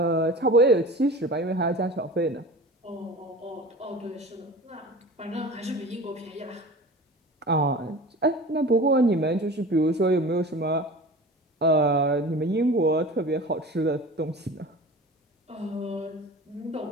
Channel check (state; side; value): normal; both; correlation 0.37